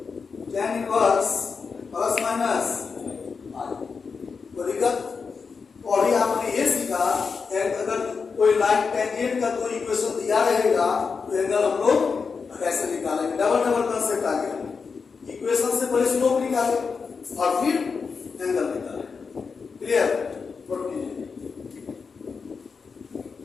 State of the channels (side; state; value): right; quieter; 5.2 dB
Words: tan inverse plus minus 5। तो दिक्कत और ही आपने ये सीखा, अगर कोई लाइन टेंजेंट का कोई इक्वेशन दिया रहेगा तो एंगल हम लोग कैसे निकालेंगे? डबल कंसेप्ट आ गया। इक्वेशन से पहले स्लोप निकाले और फिर एंगल निकाले। क्लियर? नोट कीजिए।